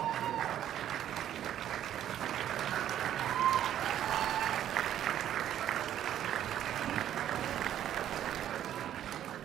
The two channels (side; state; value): left; quieter; 11.1 dB